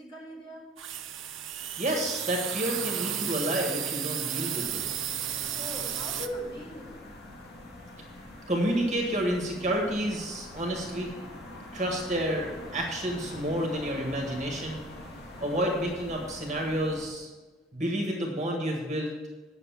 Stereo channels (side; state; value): both; normal; correlation 0.48